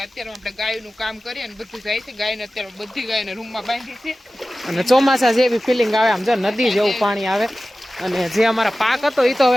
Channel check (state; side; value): normal; both; correlation 0.96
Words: અત્યારે આપણે ગાયનું કામ કરીએ અને બધું જાય છે. ગાયને અત્યારે બધી ગાયને રૂમમાં બાંધી છે અને ચોમાસા જેવી ફિલિંગ આવે, આમ જો નદી જેવું પાણી આવે. અને જે અમારા પાક હતો એ તો